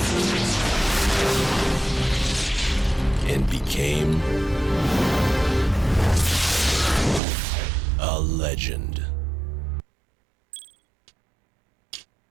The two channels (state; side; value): drops out; left; at 7.2 s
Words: and became a legend.